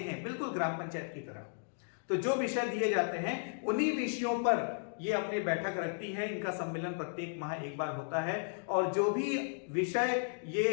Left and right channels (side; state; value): right; silent; digital silence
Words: बिल्कुल ग्राम पंचायत की तरह, तो जो विषय दिए जाते हैं उन्हीं विषयों पर ये अपनी बैठक रखती है। इनका सम्मेलन प्रत्येक माह एक बार होता है, और जो भी